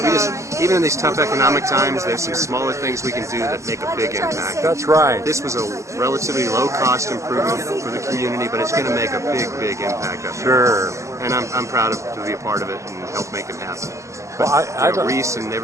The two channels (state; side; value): late; left; 0.15 ms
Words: Even in these tough economic times, there's some smaller things we can do that make a big impact. That's right. This was a relatively low-cost improvement for the community, but it's going to make a big impact up here. Sure. And I'm proud to be a part of it and help make it happen. But Well, I don't- Reese and